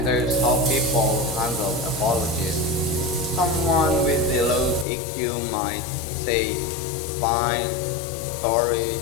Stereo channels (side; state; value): right; drops out; at 4.9 s